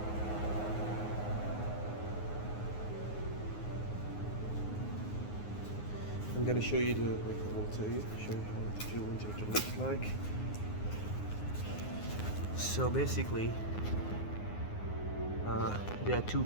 I'm gonna show you show you how the fuel injector looks like. So basically, there are two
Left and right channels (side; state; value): right; late; 9.6 ms